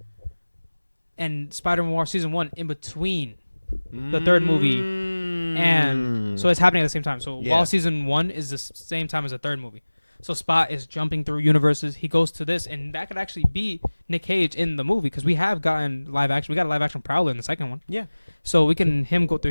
and Spider-Man Noir season 1 in between the third movie, and so it's happening at the same time. So while season 1 is the same time as the third movie. So Spot is jumping through universes. He goes to this, and that could actually be Nick Cage in the movie, because we have gotten live action. We got a live action Prowler in the second one. Yeah. So we can him go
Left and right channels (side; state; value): both; inverted; correlation -1.00